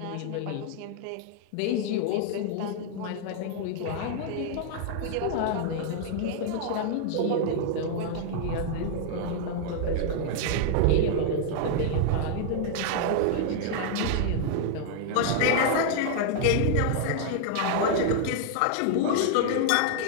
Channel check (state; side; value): different; both; correlation -0.01